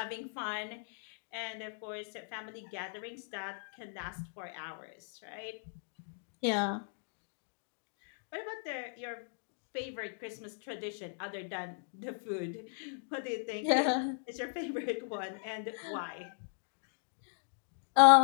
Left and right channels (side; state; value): right; silent; digital silence